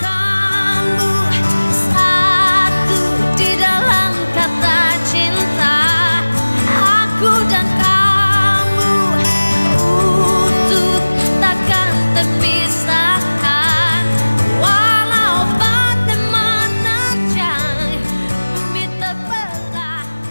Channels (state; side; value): inverted; both; correlation -1.00